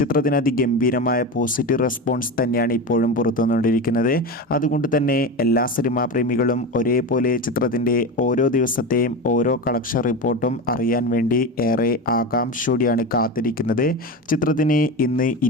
അതിഗംഭീരമായ പോസിറ്റീവ് റെസ്പോൺസ് തന്നെയാണ് ഇപ്പോഴും പുറത്തുവന്നുകൊണ്ടിരിക്കുന്നത്. അതുകൊണ്ട് തന്നെ എല്ലാ സിനിമാ പ്രേമികളും ഒരേപോലെ ചിത്രത്തിൻ്റെ ഓരോ ദിവസത്തെയും ഓരോ കളക്ഷൻ റിപ്പോർട്ടും അറിയാൻ വേണ്ടി ഏറെ ആകാംക്ഷയോടെയാണ് കാത്തിരിക്കുന്നത്. ചിത്രത്തിന് ഇന്ന്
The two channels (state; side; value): normal; both; correlation 0.23